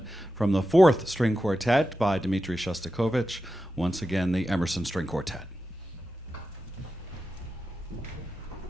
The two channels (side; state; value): both; normal; correlation 0.91